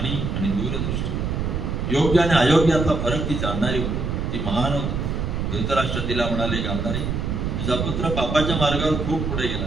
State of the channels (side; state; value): right; noise; rumble, 1 dB below the sound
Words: आणि दूरदृष्टी, योग्य आणि अयोग्यातला फरक ती जाणणारी होती. ती महान होती. धृतराष्ट्र तिला म्हणाले, गांधारी, तुझा पुत्र पापाच्या मार्गावर खूप पुढे गेला.